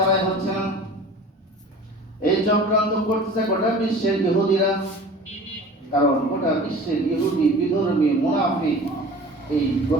হচ্ছে না, এই চক্রান্ত করতেছে গোটা বিশ্বের ইহুদিরা। কারণ গোটা বিশ্বের ইহুদি বিধর্মী মুনাফিক, এই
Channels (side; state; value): both; normal; correlation 0.41